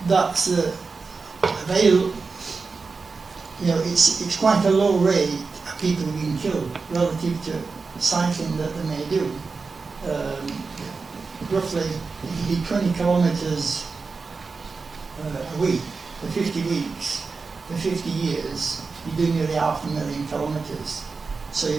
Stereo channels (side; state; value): left; quieter; 4.5 dB